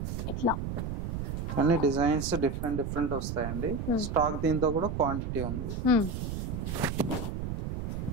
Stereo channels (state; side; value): noise; right; rumble, 4 dB below the sound